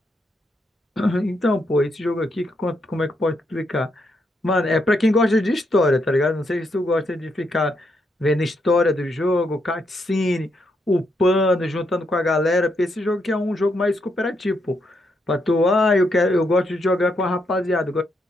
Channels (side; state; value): both; normal; correlation 0.79